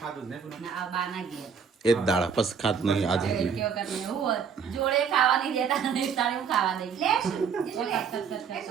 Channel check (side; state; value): left; quieter; 6.6 dB